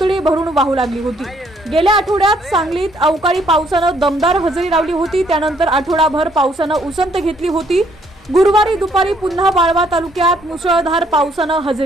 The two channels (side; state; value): both; normal; correlation 0.67